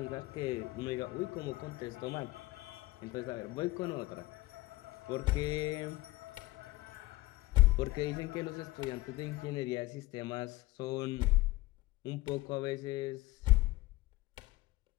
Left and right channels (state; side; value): quieter; right; 19.4 dB